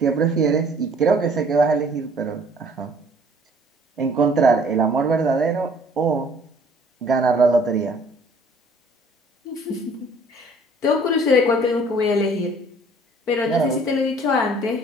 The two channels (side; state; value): both; normal; correlation 0.56